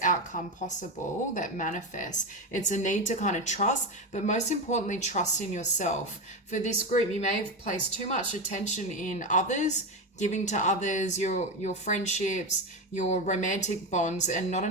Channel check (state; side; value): normal; both; correlation 0.16